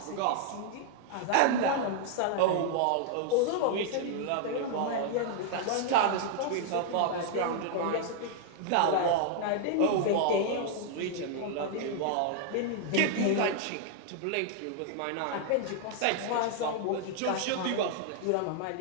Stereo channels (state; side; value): different; both; correlation 0.00